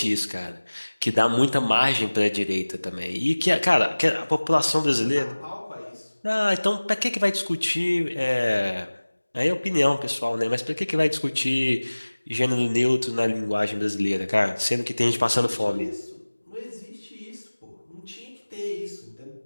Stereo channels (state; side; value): inverted; both; correlation -1.00